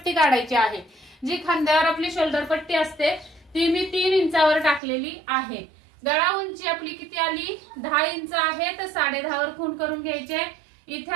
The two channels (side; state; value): left; drops out; at 4.8 s